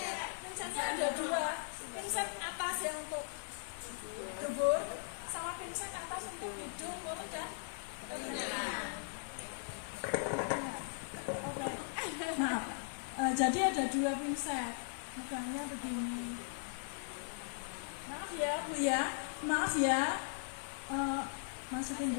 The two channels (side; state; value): right; silent; digital silence